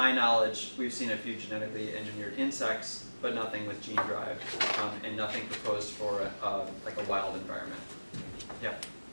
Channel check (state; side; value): inverted; both; correlation -1.00